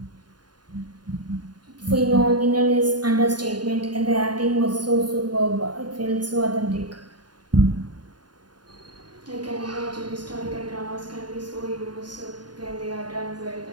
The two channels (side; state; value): left; late; 0.70 ms